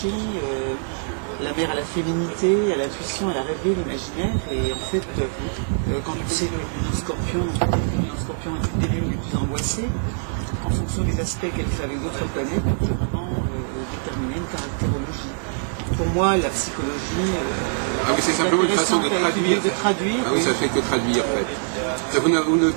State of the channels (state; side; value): silent; left; 61 dB below the other